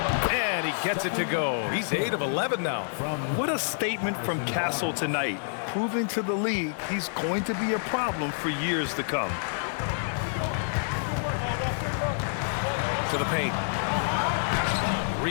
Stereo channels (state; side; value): silent; right; digital silence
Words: And he gets it to go. He's 8 of 11 now. What a statement from Castle tonight, proving to the league he's going to be a problem for years to come. To the paint.